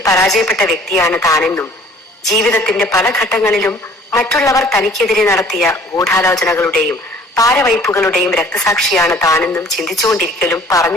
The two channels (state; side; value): normal; both; correlation 0.53